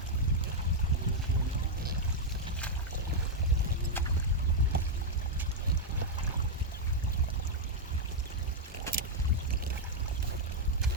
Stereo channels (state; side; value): normal; both; correlation -0.02